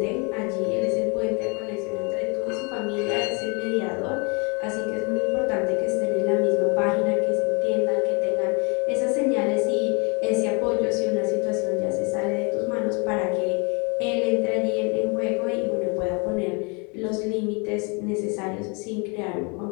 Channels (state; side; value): quieter; right; 32.8 dB